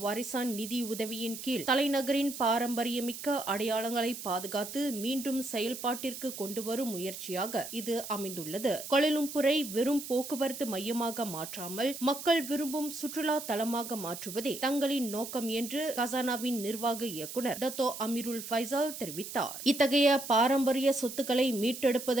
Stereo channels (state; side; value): noise; right; hiss, 9 dB below the sound